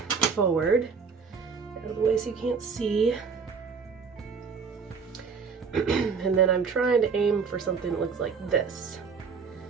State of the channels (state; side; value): quieter; left; 5.6 dB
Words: forward out of the way so you can't see. And then I'm trying to aim for something that looks like this.